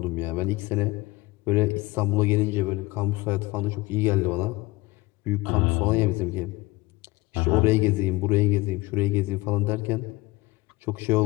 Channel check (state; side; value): quieter; right; 20.9 dB